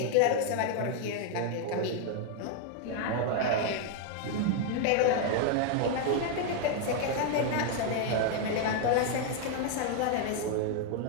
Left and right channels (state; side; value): different; both; correlation 0.00